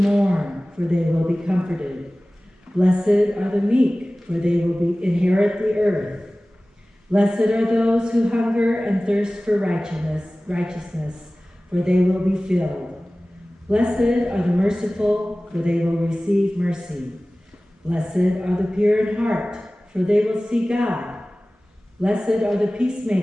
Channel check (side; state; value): both; normal; correlation 0.98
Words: for they will be comforted. Blessed are the meek, for they will inherit the earth. Blessed are those who hunger and thirst for righteousness, for they will be filled. Blessed are the merciful, for they will receive mercy. Blessed are the pure in heart, for they will see God. Blessed are the